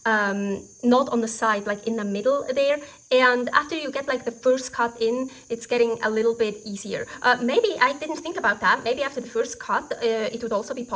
not on the side, like in the middle there. And after you get like the first cut in, it's getting a little bit easier. Maybe I didn't think about that. Maybe after the first cut, it would also be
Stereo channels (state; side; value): identical; both; correlation 1.00